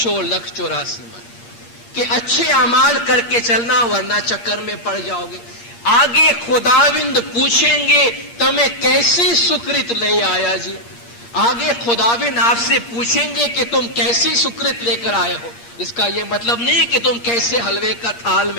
لکھ 84 من، کہ اچھے اعمال کر کے چلنا ورنہ چکر میں پڑ جاؤ گے۔ آگے خداوند پوچھیں گے تمہیں کیسی سکرت لے آیا جی، آگے خداوند آپ سے پوچھیں گے کہ تم کیسی سکرت لے کر آئے ہو۔ اس کا یہ مطلب نہیں کہ تم کیسے حلوے کا تھال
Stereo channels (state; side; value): late; right; 8.6 ms